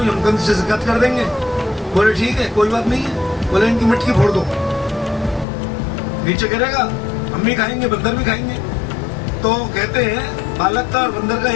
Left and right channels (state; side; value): drops out; right; at 5.5 s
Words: हम कंस से शिकायत कर देंगे। बोले ठीक है कोई बात नहीं है। बोले इनकी मटकी फोड़ दो, नीचे गिरेगा, हम भी खाएंगे, बंदर भी खाएंगे। तो कहते हैं बालक का और बंदर का